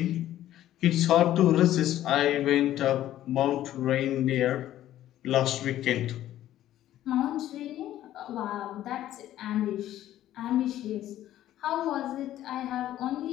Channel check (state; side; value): quieter; right; 13.0 dB